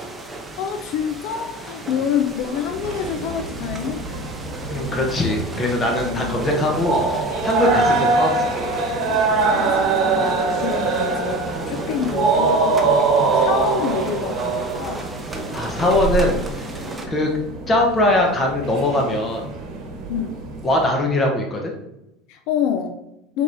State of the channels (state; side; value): normal; both; correlation 0.33